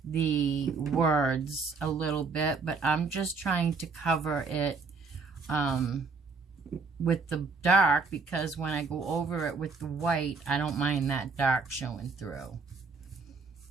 the words a little bit, but I'm just trying to cover it with the dark, because when I go over it with the white, I don't mind that dark showing through.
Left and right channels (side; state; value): left; quieter; 4.5 dB